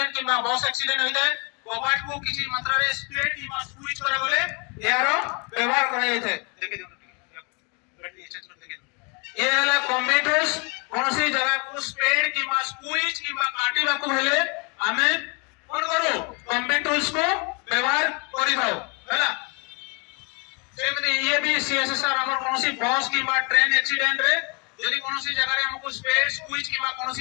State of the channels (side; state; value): right; quieter; 32.9 dB